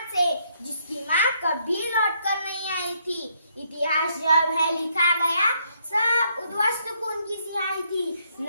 से जिसकी माँ कभी लौट कर नहीं आई थी। इतिहास जब है लिखा गया सब उद्वस्त खून की सिहाई थी।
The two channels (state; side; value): inverted; both; correlation -0.72